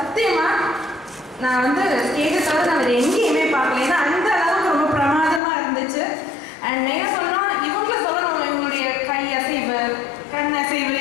நான் வந்து ஸ்டேஜை தவிர நான் வேறு எங்கேயுமே பார்க்கல. ஏன்னா அந்த அளவுக்கு ரொம்ப பிரமாதமாக இருந்துச்சு. அண்ட் என்ன சொன்னால் இவங்களை சொல்லணும், இவங்களுடைய கை அசைவு, கண் அசைவு,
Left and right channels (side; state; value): right; drops out; at 5.4 s